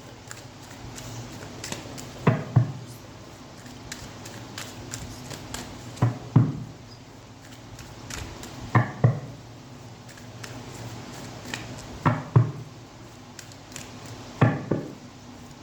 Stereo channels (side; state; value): both; identical; correlation 1.00